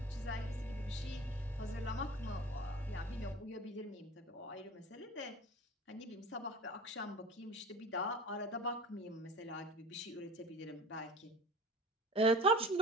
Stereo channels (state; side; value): normal; both; correlation 0.37